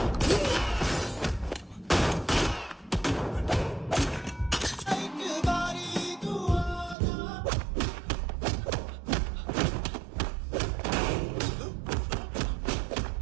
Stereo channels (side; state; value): left; drops out; at 7.0 s